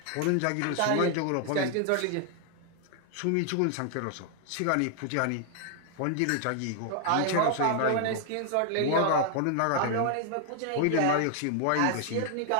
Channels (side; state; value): both; different; correlation 0.00